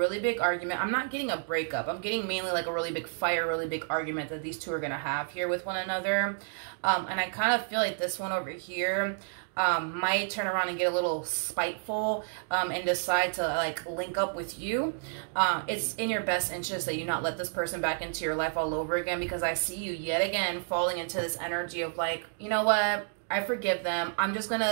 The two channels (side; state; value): left; silent; digital silence